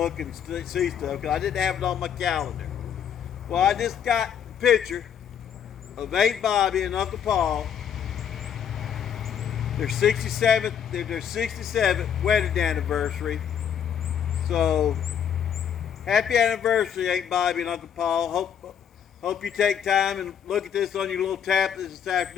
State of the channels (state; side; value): quieter; right; 8.5 dB